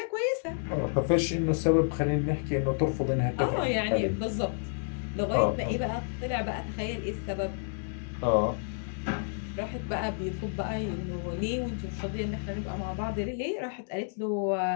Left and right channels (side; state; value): right; silent; digital silence